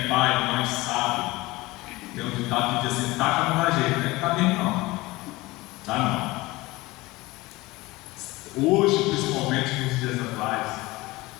pai, mãe, sabe, tem um ditado que diz assim: taca não dá jeito, né? Tá bem não. Tá não. Hoje, principalmente nos dias atuais,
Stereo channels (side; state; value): right; quieter; 20.7 dB